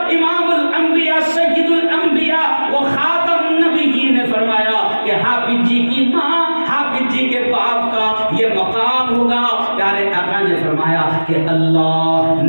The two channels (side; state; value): both; inverted; correlation -1.00